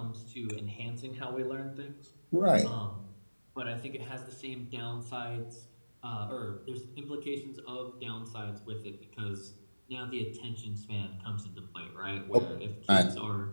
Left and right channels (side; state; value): both; inverted; correlation -1.00